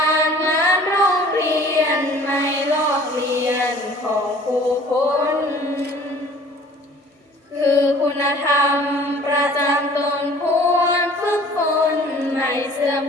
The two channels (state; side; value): normal; both; correlation 0.50